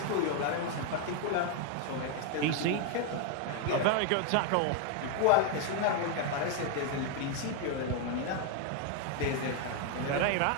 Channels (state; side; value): different; both; correlation 0.01